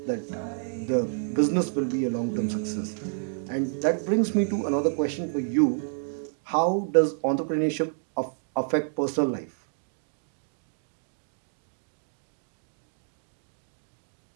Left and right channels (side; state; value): left; silent; digital silence